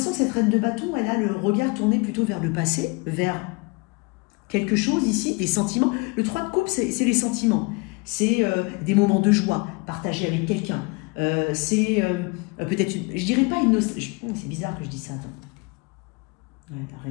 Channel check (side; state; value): right; quieter; 28.1 dB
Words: que cette reine de bâton, elle a le regard tourné plutôt vers le passé, vers quelque chose ici, des sentiments. Le 3 de coupe, c'est les sentiments. C'est des moments de joie partagés avec quelqu'un. C'est peut-être, je dirais pas une nostalgie. C'est bizarre que je dise ça, attends. Ouais, la